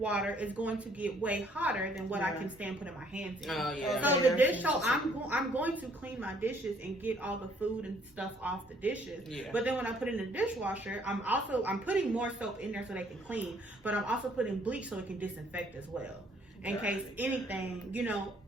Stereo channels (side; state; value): both; normal; correlation 0.63